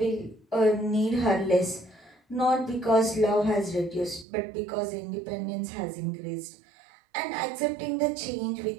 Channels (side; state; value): left; drops out; at 4.2 s